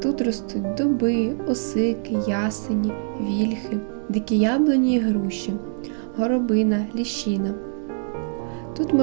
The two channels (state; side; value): silent; left; digital silence